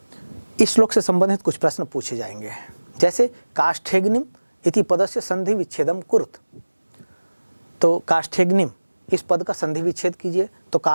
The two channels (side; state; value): both; inverted; correlation -1.00